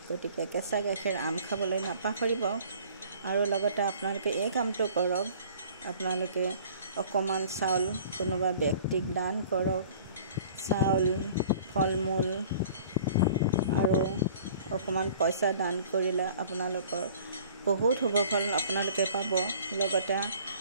গতিকে কেঁচা গাখীৰ আম খাবলৈ নাপাহৰিব। আৰু লগতে আপোনালোকে এই কামটো কৰক, আপোনালোকে অকণমান চাউল কোনোবা ব্যক্তিক দান কৰক। চাউল, ফল মূল আৰু অকণমান পইচা দান কৰিলে আপোনালোকৰ বহুত শুভ ফল আপোনালোকে পাব। লগতে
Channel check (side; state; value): both; inverted; correlation -0.50